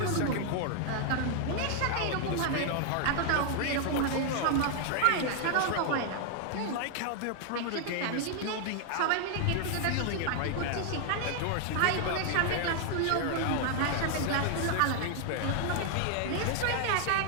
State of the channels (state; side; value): different; both; correlation 0.00